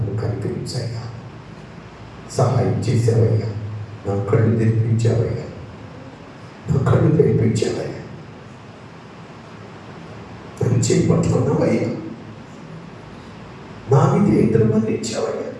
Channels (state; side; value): identical; both; correlation 1.00